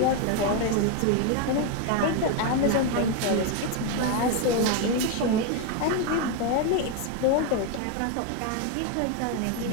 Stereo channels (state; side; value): different; both; correlation 0.01